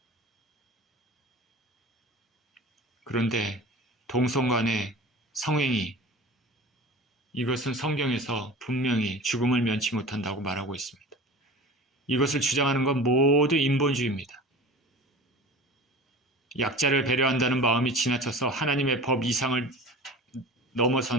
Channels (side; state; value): both; normal; correlation 0.37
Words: 그런데 동성 간의 성행위, 이것은 성경에서 분명히 죽음을 면치 못한다고 말하고 있습니다. 이것을 주장하는 건 모두 인본주의입니다. 약자를 배려한다는 마음이 지나쳐서 하나님의 법 이상을